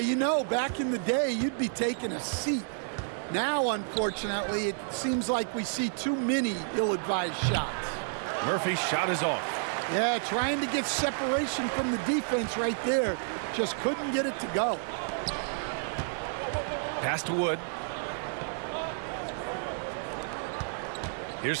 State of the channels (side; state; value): left; silent; digital silence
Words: know, back in the day, you'd be taking a seat. Now, unfortunately, it seems like we see too many ill-advised shots. Murphy's shot is off. Yeah, trying to get separation from the defense right there. Just couldn't get it to go. Pass to Wood.